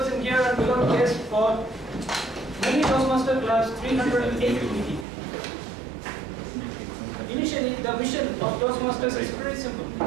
in here and below guests for Medley Toastmaster Club's 308th meeting. Initially, the mission of Toastmasters is very simple.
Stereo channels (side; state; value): left; drops out; at 5.1 s